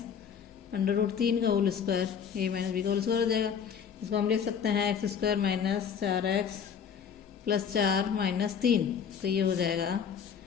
under root 3 का whole square, a minus B का होल स्क्वायर हो जाएगा। इसको हम लिख सकते हैं x² minus 4x plus 4 minus 3, तो ये हो जाएगा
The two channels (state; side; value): quieter; right; 7.4 dB